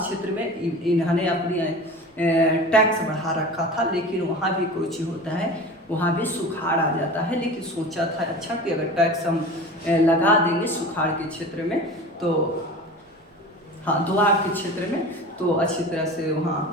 क्षेत्र में इन्होंने अपनी टैक्स बढ़ा रखा था, लेकिन वहाँ भी कुछ होता है, वहाँ भी सुखाड़ आ जाता है। लेकिन सोचा था अच्छा कि अगर टैक्स हम लगा देंगे सुखाड़ के क्षेत्र में, तो हाँ दोआब के क्षेत्र में, तो अच्छी तरह से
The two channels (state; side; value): normal; both; correlation 0.35